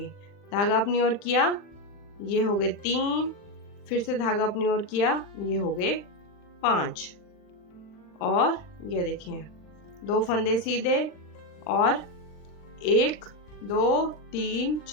धागा अपनी ओर किया, ये हो गए 3, फिर से धागा अपनी ओर किया, ये हो गए 5। और ये देखिए 2 फंदे सीधे और 1 2 3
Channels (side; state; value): right; late; 40 ms